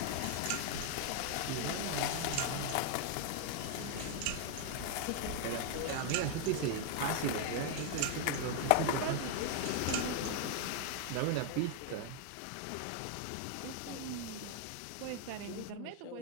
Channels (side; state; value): both; different; correlation 0.00